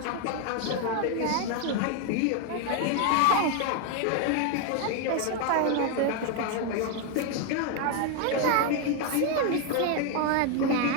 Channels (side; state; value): both; different; correlation 0.01